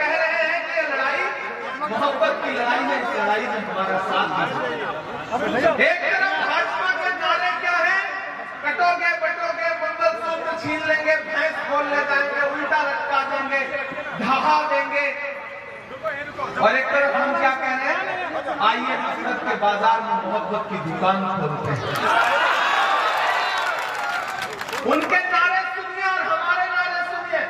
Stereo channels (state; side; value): identical; both; correlation 1.00